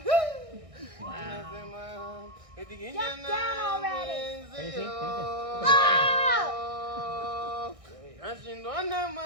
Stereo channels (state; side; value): late; left; 1.6 ms